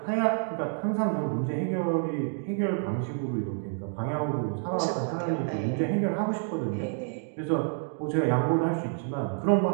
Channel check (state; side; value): silent; left; 56 dB below the other